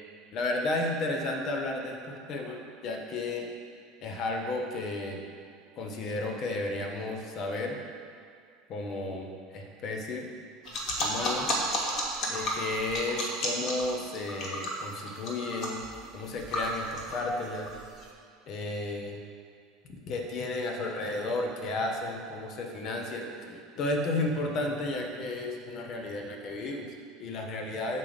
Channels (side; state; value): both; normal; correlation 0.40